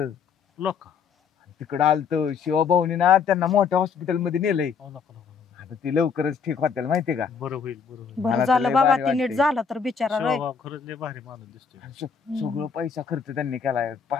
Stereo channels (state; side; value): quieter; right; 6.2 dB